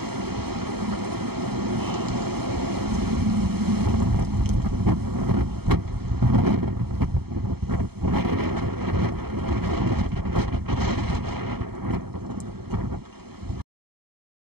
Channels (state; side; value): late; left; 0.96 ms